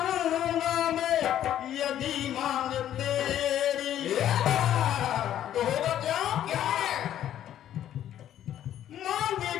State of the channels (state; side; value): quieter; right; 11.3 dB